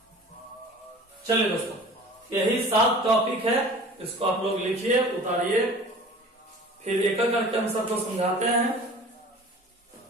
चलिए दोस्तों, यही 7 टॉपिक है, इसको आप लोग लिखिए, उतारिए, फिर एक एक करके हम सबको समझाते हैं।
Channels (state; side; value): normal; both; correlation 0.43